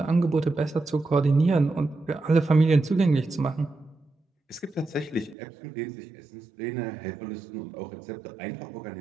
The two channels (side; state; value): left; drops out; at 5.4 s